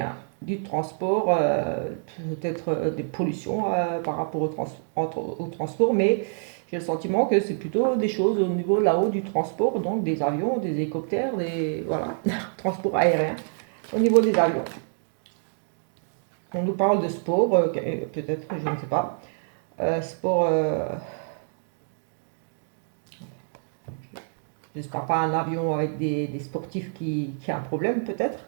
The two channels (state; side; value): silent; left; digital silence